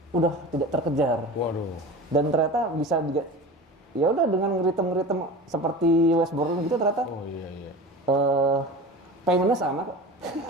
udah tidak terkejar. Waduh. Dan ternyata bisa juga, ya udah dengan ngeritem seperti Wes Borland gitu ternyata. Oh iya. Paymentnya sama kok.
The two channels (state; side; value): normal; both; correlation 0.33